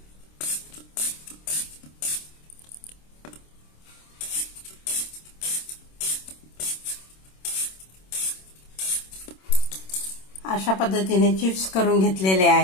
अशा पद्धतीने चिप्स करून घेतलेले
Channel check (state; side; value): late; right; 26 ms